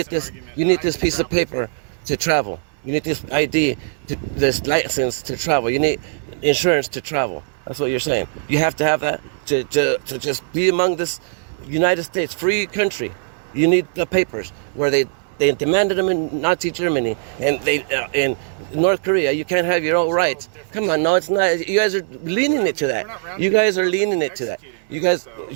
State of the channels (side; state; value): left; silent; 61 dB below the other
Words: this piece of paper to travel. You need this ID, this license to travel. You need insurance to travel. That's what you're saying. You have to have that to just be among this United States free country. You need the papers where they demanded them in Nazi Germany, and in North Korea you can't have your own rights. Come on, no, it's not. You guys are leaning it to that. You guys are leaning it to that. You guys,